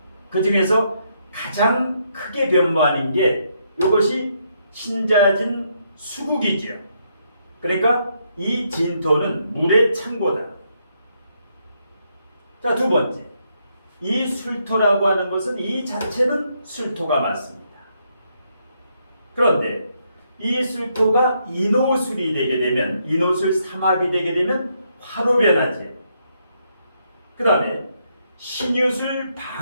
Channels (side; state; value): both; inverted; correlation -0.76